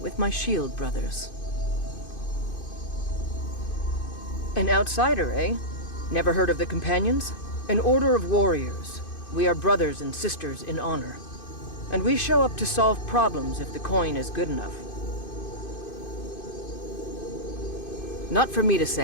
with my shield brothers. An outsider, eh? Never heard of the Companions? An order of warriors. We are brothers and sisters in honor. And we show up to solve problems if the coin is good enough. Not for me to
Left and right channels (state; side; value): late; right; 2.5 ms